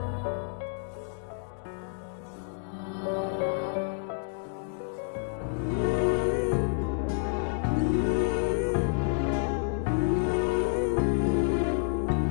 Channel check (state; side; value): silent; right; digital silence